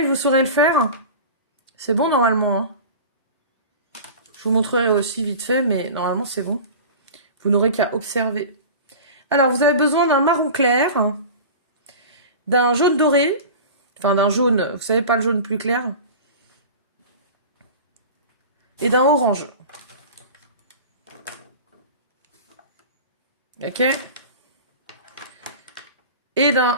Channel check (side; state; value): both; inverted; correlation -0.35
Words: vous saurez le faire. C'est bon normalement. Hein, je vous montrerai aussi vite fait, mais normalement c'est bon. Vous n'aurez qu'à observer. Alors vous avez besoin d'un marron clair, d'un jaune doré, enfin d'un jaune, vous savez pas le jaune plus clair, et d'un orange. Ok? Et